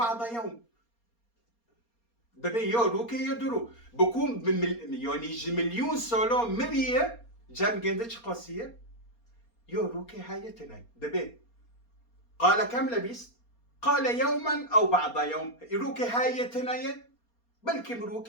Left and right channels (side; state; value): right; late; 4.3 ms